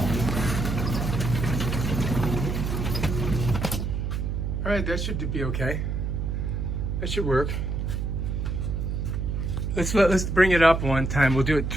All right, that should be okay. That should work. Let's bring it up one time. We'll do it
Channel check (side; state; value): right; noise; hum, 1 dB below the sound